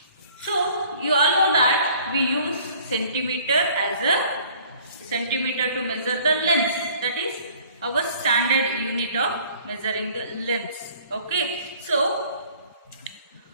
So you all know that we use centimeter as a centimeter to measure the length, that is our standard unit of measuring the length. Okay, so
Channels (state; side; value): inverted; both; correlation -0.53